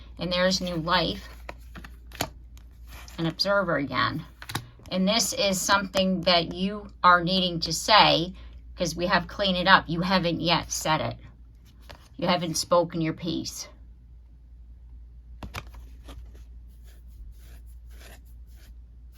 And there's new life. An observer again. And this is something that you are needing to say, because we have cleaned it up. You haven't yet said it. You haven't spoken your piece.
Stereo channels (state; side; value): identical; both; correlation 1.00